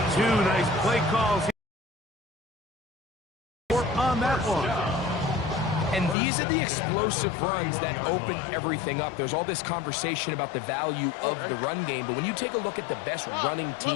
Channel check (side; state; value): right; drops out; at 6.2 s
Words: Two nice play calls on that one. And these are the explosive runs that open everything up. There's all this conversation about the value of the run game, but when you take a look at the best running